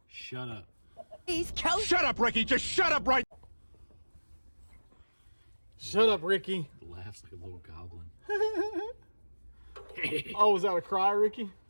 Shut up. Shut up, Ricky. Just shut up right. Shut up, Ricky. Laughs like a little goblin. Oh, was that a cry, Ricky?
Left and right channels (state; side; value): inverted; both; correlation -1.00